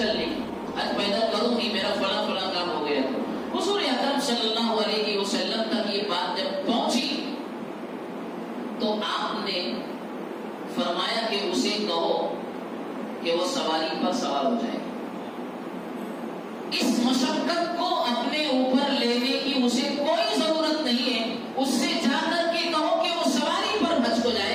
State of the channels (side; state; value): both; identical; correlation 1.00